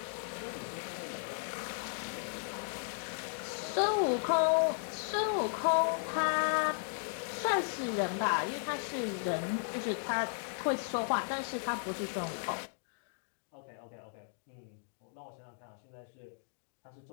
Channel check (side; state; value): right; silent; digital silence